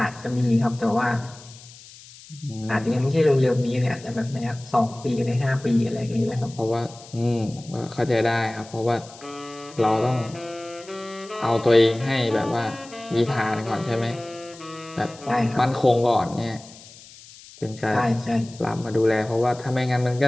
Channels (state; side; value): noise; left; hiss, 20 dB below the sound